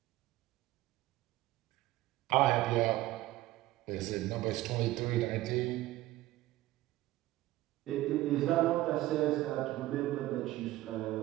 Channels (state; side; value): quieter; left; 16.4 dB